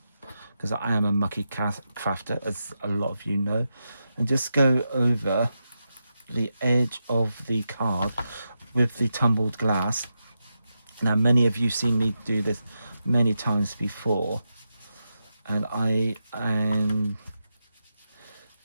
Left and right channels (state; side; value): inverted; both; correlation -0.87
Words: because I am a mucky crafter, as a lot of you know, and just go over the edge of the card with the tumbled glass. Now, many of you seen me do this many times before, and I am